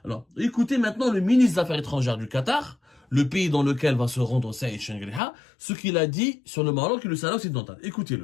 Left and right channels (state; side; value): drops out; right; at 5.2 s